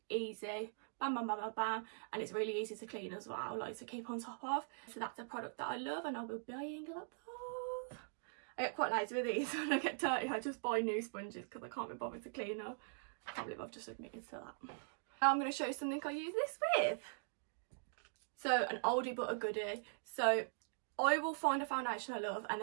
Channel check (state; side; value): silent; left; digital silence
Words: easy, bam bam bam bam bam, and it's really easy to clean as well, like to keep on top of. So that's a product that I love and I will be buying a lot of. I get quite lazy with these. When I get dirty I just buy new sponges because I can't be bothered to clean them. I can't believe I've just admitted to that. Now I'm going to show you something I use this with. So an oldie but a goodie. So I will find a foundation I love and